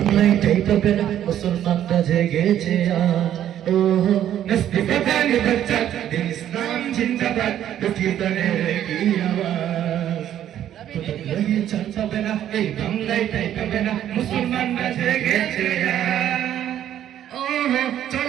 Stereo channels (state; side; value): quieter; left; 11.1 dB